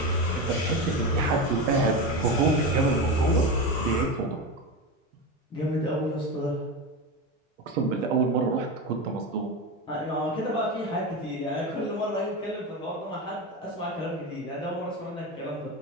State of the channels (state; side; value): normal; both; correlation 0.19